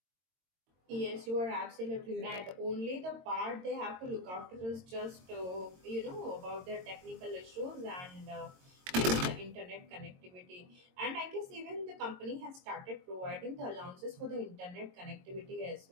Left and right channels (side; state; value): left; late; 22 ms